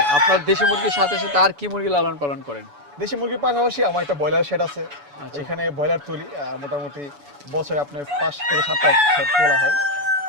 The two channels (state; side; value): late; left; 7.0 ms